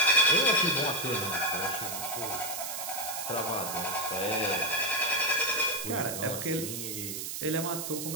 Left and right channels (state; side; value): noise; right; hiss, 5 dB below the sound